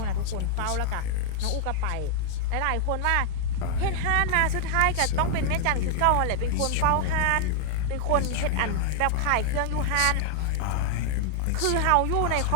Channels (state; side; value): different; both; correlation 0.00